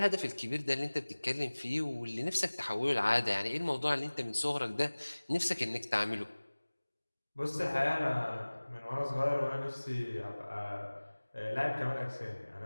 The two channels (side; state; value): both; inverted; correlation -1.00